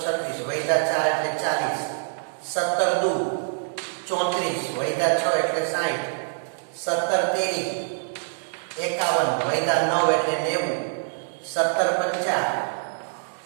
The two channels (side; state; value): left; silent; digital silence